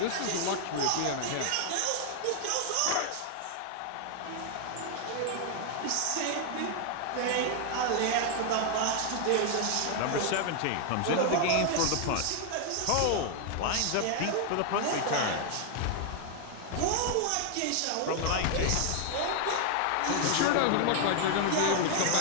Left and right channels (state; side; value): different; both; correlation 0.00